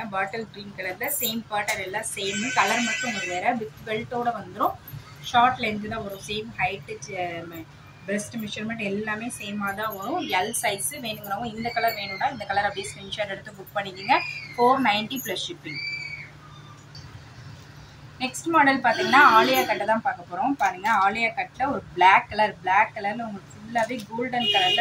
பாட்டில் க்ரீன் கலரில் சேம் பேட்டர்ன் எல்லாம் சேம், கலர் மட்டும் உங்களுக்கு வேறு. வித் பெல்ட்டோட வந்துடும். ஷார்ட் லென்த்து தான் வரும். சேம் ஹைட்டு, பிரஸ்ட் மெஷர்மெண்ட் எல்லாமே சேமாக தான் வரும். L size. வேணுங்கிறவங்க இந்த கலர் வேணும்னா இந்த கலர் அப்படியே ஸ்க்ரீன்ஷாட் எடுத்து புக் பண்ணிக்கோங்க. 490 + ஷிப்பிங். நெக்ஸ்ட் மாடல் பார்த்தீங்கன்னா ஆலியா கட்டை தான் பார்க்க போகிறோம். பாருங்கள், ஆலியா கட்டில் ஒரு பிளாக் கலரில் உங்களுக்கு ஃபுல்லாகவே கோல்டன்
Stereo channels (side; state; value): both; identical; correlation 1.00